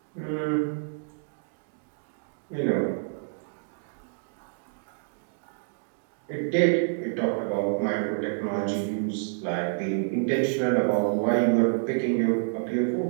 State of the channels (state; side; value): silent; left; digital silence